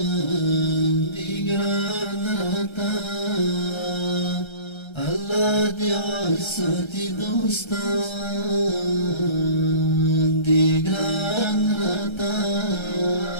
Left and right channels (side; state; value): right; late; 1.3 ms